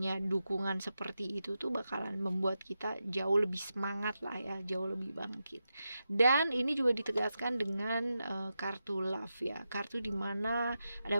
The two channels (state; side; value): inverted; both; correlation -0.89